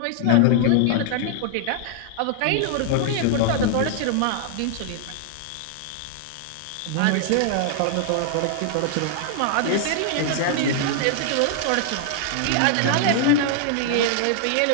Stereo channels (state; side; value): different; both; correlation 0.00